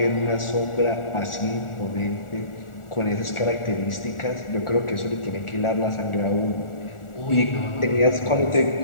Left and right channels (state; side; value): late; right; 1.4 ms